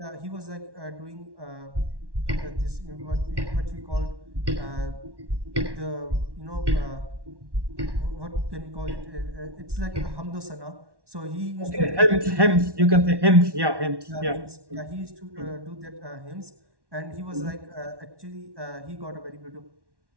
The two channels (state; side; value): late; left; 1.1 ms